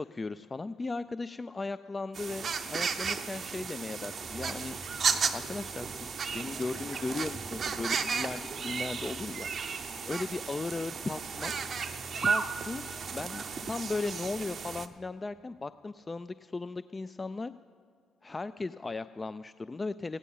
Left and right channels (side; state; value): both; normal; correlation 0.85